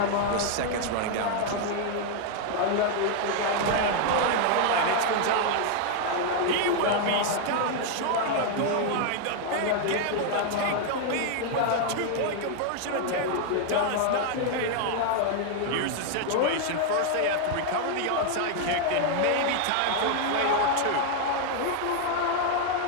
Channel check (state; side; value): different; both; correlation 0.00